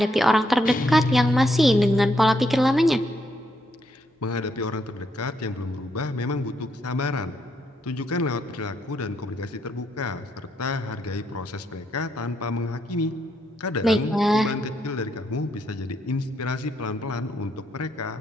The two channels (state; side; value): normal; both; correlation 0.76